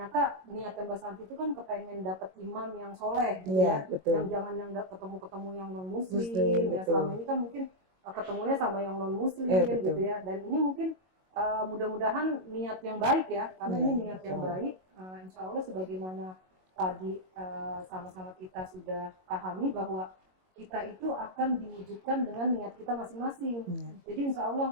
niat Mbak Santi itu kan kepengen dapat imam yang soleh gitu ya, yang jangan yang ketemu-ketemu yang non muslim ya. Selama ini kan mungkin ketemunya sama yang non muslim gitu ya, dan ini mungkin mudah-mudahan niat yang baik ya, karena ini niat yang baik. Insya Allah sebagaimana tadi sama-sama kita sudah pahami bahwa kita itu akan diwujudkan dengan niat kita masing-masing. Jadi insya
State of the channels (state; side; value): late; left; 22 ms